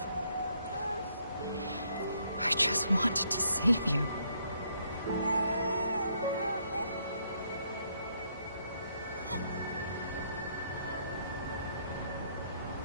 I just wanted to save you.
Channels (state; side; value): inverted; both; correlation -0.71